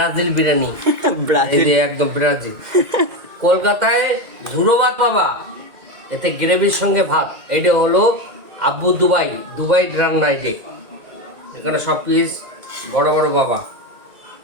বিরিয়ানি। এই ব্রাজিল যে একদম ব্রাজিল। কলকাতায় ঝুরো ভাত পাবা, এতে গ্রেভির সঙ্গে ভাত। এটা হলো আব্বু দুবাই রান্না। এখানে সব পিস বড় বড় বাবা।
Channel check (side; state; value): left; late; 1.9 ms